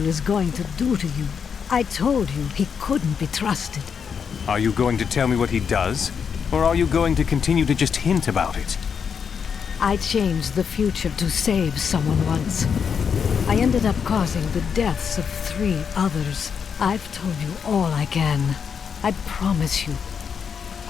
is going to do to you. I told you he couldn't be trusted. Are you going to tell me what he does? Or are you going to continue to just hint about it? I changed the future to save someone once. I ended up causing the deaths of 3 others. I've told you all I can. I promise you.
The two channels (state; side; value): quieter; right; 6.7 dB